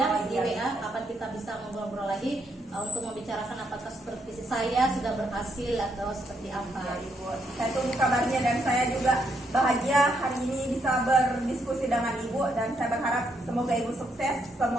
di WA kapan kita bisa ngobrol-ngobrol lagi untuk membicarakan apakah supervisi saya sudah berhasil atau seperti apa. Ya, Ibu. Saya tunggu kabarnya dan saya juga bahagia hari ini bisa berdiskusi dengan Ibu dan saya berharap semoga Ibu sukses,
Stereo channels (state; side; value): normal; both; correlation 0.76